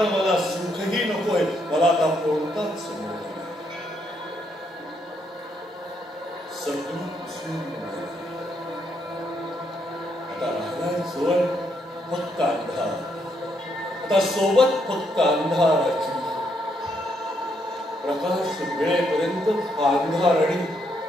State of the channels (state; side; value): normal; both; correlation 0.76